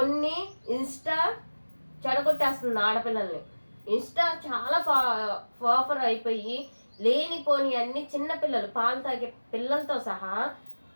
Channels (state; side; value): inverted; both; correlation -1.00